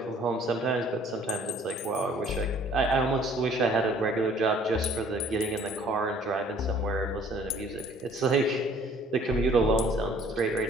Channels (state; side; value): normal; both; correlation 0.56